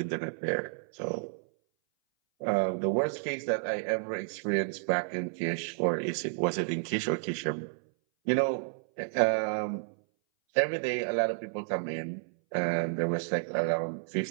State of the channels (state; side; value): silent; left; 57 dB below the other